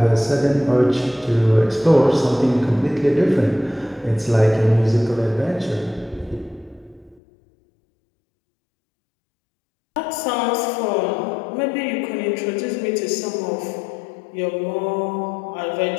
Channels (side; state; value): right; drops out; at 7.2 s